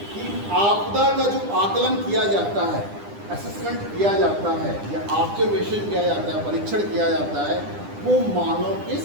कि आपदा का जो आकलन किया जाता है, असेसमेंट किया जाता है या ऑब्जर्वेशन किया जाता है, परीक्षण किया जाता है, वो मानव के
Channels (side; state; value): left; late; 9.9 ms